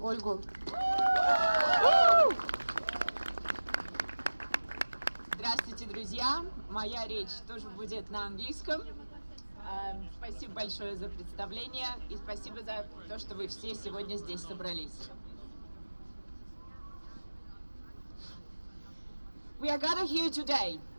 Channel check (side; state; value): both; inverted; correlation -1.00